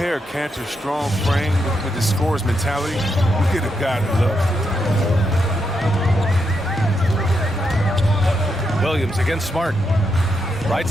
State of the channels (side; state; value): both; normal; correlation 0.82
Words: Cantor's strong frame with his scorer's mentality, you get a guy that loves it. Williams against Smart. Right